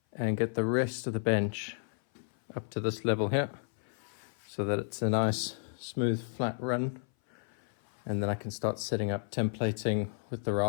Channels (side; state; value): right; silent; 56 dB below the other